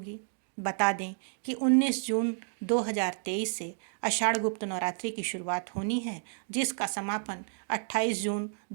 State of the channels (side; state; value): left; silent; digital silence